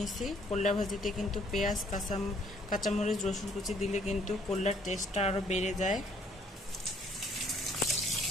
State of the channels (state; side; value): normal; both; correlation 0.63